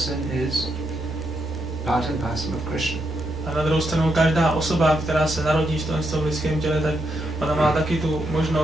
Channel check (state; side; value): normal; both; correlation 0.81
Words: is part and parcel of Krishna. A na druhou stranu každá osoba, která se narodí v tom lidském těle, tak ona má taky tu